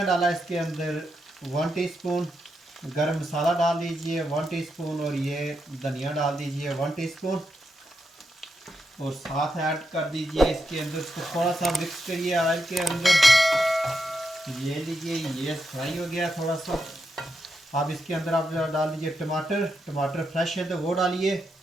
डाला है इसके अंदर 1 टीस्पून। गरम मसाला डाल दीजिए 1 टीस्पून, और ये धनिया डाल दीजिए 1 टीस्पून, और साथ ऐड कर दीजिए इसके अंदर। इसको थोड़ा सा मिक्स करिए ऑयल के अंदर। ये लीजिए, ये फ्राई हो गया थोड़ा सा। अब इसके अंदर आप डाल दीजिए टमाटर। टमाटर फ्रेश है तो वो डालिए।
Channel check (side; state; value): both; normal; correlation 0.84